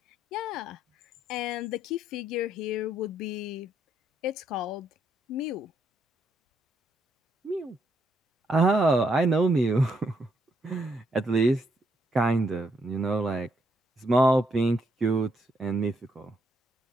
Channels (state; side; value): normal; both; correlation 0.75